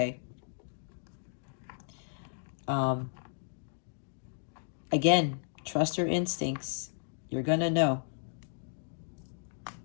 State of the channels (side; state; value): right; silent; digital silence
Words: Again, trust your instincts. You're going to know.